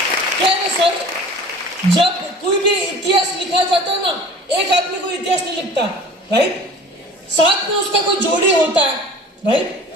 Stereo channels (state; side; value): normal; both; correlation 0.43